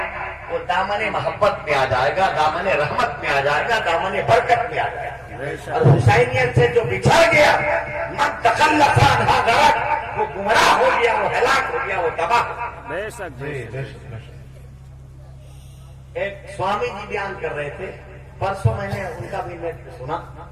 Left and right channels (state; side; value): identical; both; correlation 1.00